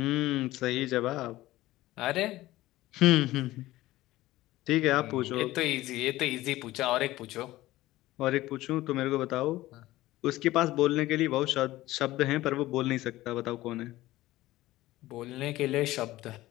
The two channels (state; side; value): quieter; right; 16.8 dB